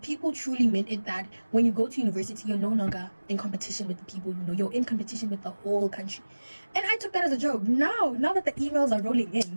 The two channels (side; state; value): both; inverted; correlation -1.00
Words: people truly meant it that when you go to university, you're no longer in competition with the people you know. You're in competition with the whole country. And I took that as a joke. Now that the emails are rolling